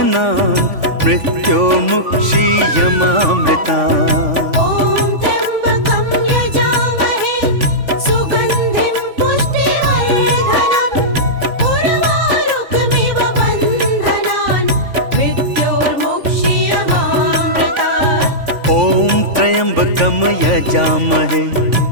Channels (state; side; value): late; left; 3.5 ms